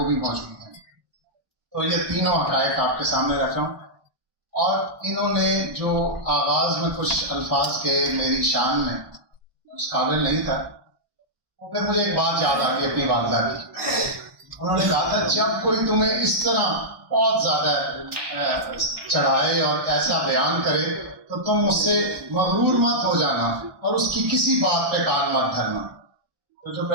بھی موجود ہیں. تو یہ تینوں حقائق آپ کے سامنے رکھ رہا ہوں. اور انہوں نے جو آغاز میں کچھ الفاظ کے میری شان میں اس قابل نہیں تھا، وہ پھر مجھے ایک بات یاد آ گئی اپنی والدہ کی. انہوں نے کہا تھا جب کوئی تمہیں اس طرح بہت زیادہ چڑھائے اور ایسا بیان کرے تو تم اس سے مغرور مت ہو جانا اور اس کی کسی بات پہ کان مت دھرنا. تو جو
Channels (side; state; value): left; late; 1.2 ms